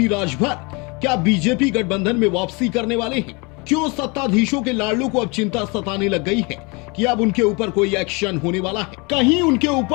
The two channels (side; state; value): right; quieter; 28.9 dB